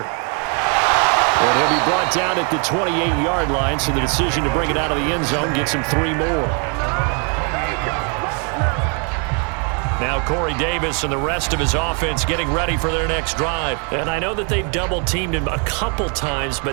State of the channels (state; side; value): quieter; left; 37.6 dB